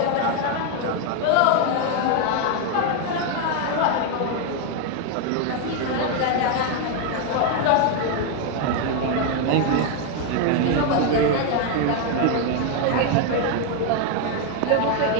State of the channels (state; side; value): different; both; correlation 0.01